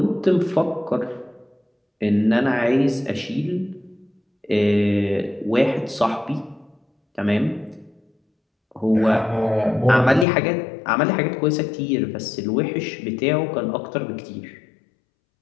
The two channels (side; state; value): right; drops out; at 10.2 s